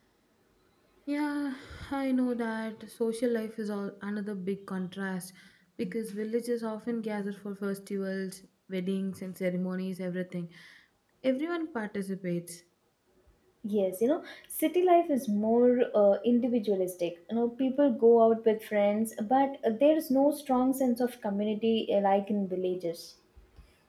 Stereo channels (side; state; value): both; identical; correlation 1.00